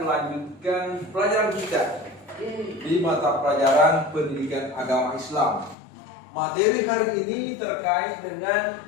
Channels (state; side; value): drops out; right; at 5.8 s